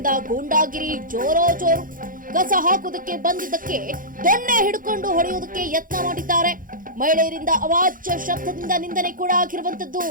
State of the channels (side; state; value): left; late; 0.40 ms